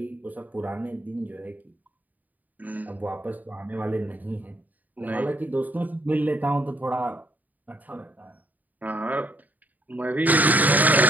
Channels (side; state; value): left; late; 0.080 ms